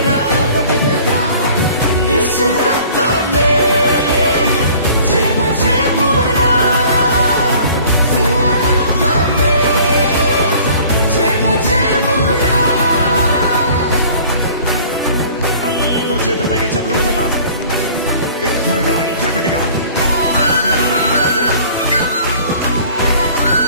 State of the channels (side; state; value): both; inverted; correlation -0.50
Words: యేసు రక్తమే జయము జయమురా, రక్తమే జయము జయమురా. అందరూ చేతుల పైకి చెప్పలేదమ్మా, బిగ్గరగా ఇంకా గట్టిగా ధ్వనులు వినబడాలి.